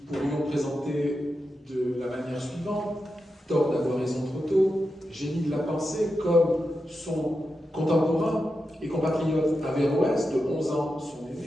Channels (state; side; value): normal; both; correlation 0.89